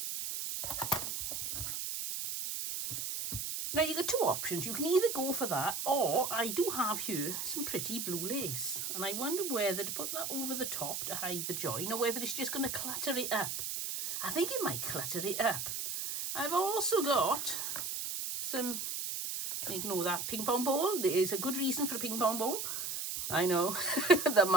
Now you've got 2 options. You can either go for that, or I do have here some pretty blue lace. And I wonder whether to put that over the top to hide the join, or whether it's just going to clutter it up. I think it might clutter it up. I've also got some, ignore that ping pong ball. There is a good reason for a ping pong ball. I know, the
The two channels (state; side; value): noise; right; hiss, 3 dB below the sound